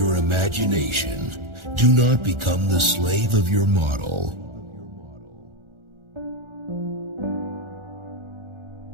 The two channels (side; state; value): left; late; 1.4 ms